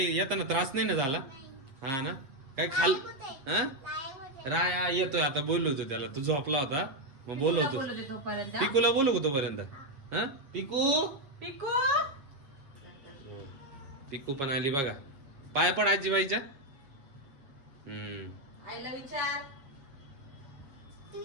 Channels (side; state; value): left; late; 7.3 ms